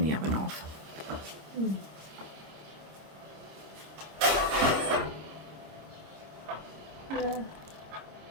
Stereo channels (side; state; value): left; late; 26 ms